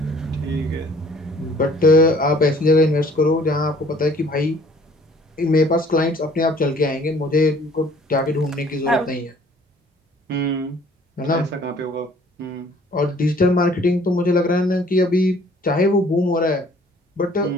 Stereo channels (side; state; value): both; normal; correlation 0.56